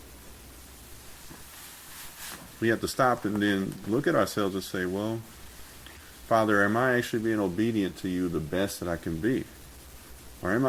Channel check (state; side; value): identical; both; correlation 1.00